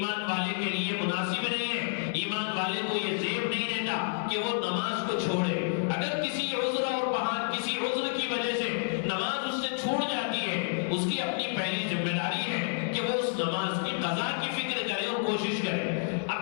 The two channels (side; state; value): right; silent; digital silence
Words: والے کے لیے مناسب نہیں ہے. ایمان والے کو یہ زیب نہیں دیتا کہ وہ نماز کو چھوڑے. اگر کسی عذر اور بہان کسی عذر کی وجہ سے نماز اس سے چھوٹ جاتی ہے، اس کی اپنی پہلی ذمہ داری ہے کہ وہ اس نماز کی قضا کی فکر کرے اور کوشش کرے.